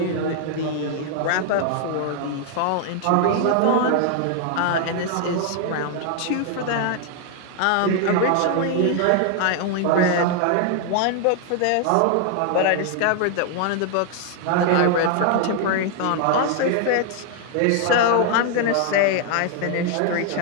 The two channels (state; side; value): different; both; correlation 0.00